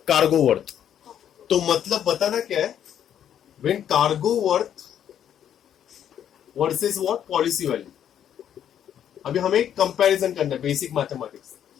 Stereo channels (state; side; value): quieter; right; 9.7 dB